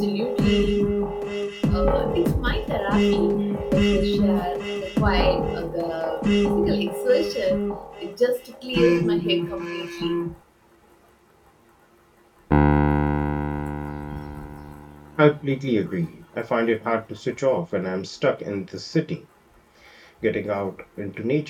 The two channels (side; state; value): both; identical; correlation 1.00